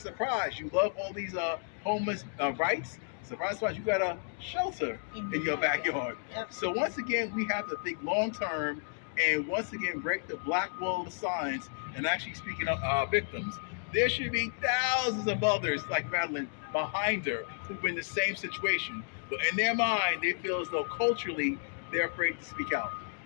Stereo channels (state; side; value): silent; right; digital silence